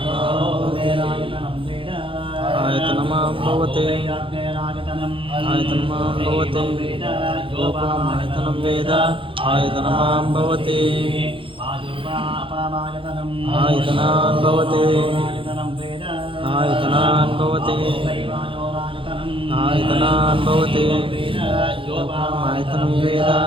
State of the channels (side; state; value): left; late; 0.25 ms